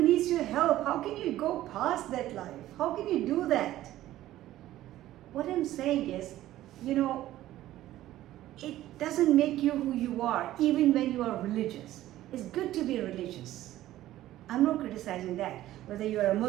needs your help. How can you go past that life? How can you do that? What I'm saying is, you know, it doesn't make you who you are, even when you are religious. It's good to be religious. I'm not criticizing that. Whether you are a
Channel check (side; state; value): left; quieter; 14.4 dB